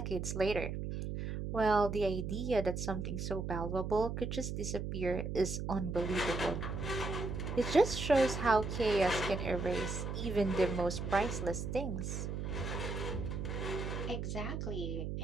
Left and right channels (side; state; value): right; noise; hum, 4 dB below the sound